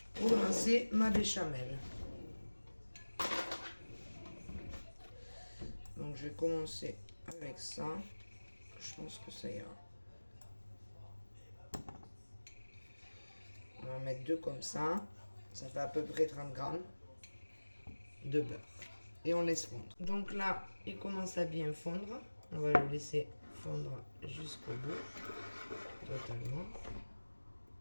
pour lancer ma béchamel. Donc je vais commencer avec ça. Je pense que ça ira. On va en mettre deux comme ça. Ça fait à peu près 30 grammes de beurre. Et on laisse fondre. Donc là, il commence à bien fondre. On va le laisser fondre jusqu'au bout. Totalement.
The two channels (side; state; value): both; inverted; correlation -1.00